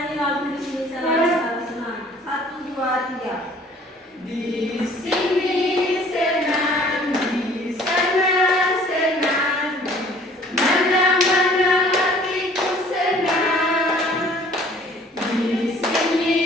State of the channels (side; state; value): both; normal; correlation 0.54